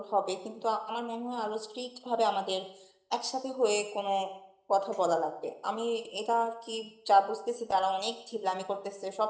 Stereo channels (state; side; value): identical; both; correlation 1.00